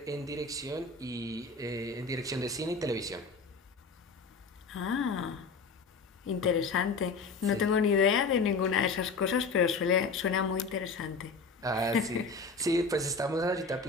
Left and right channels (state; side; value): quieter; right; 4.2 dB